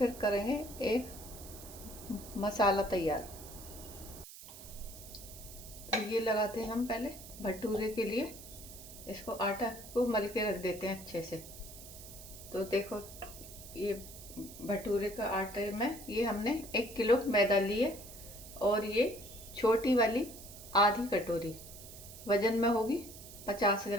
करेंगे एक मसाला तैयार। तो ये लगाते हैं हम पहले भटूरे के लिए, इसको आटा को मल के रख देते हैं अच्छे से। तो देखो, ये भटूरे का आटे में ये हमने 1 किलो मैदा लिए, और ये छोटी वाली आधी कटोरी वजन में होगी 50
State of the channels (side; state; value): right; noise; hiss, 15 dB below the sound